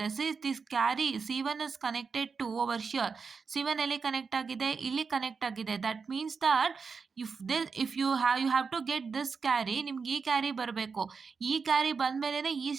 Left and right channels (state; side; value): quieter; left; 5.2 dB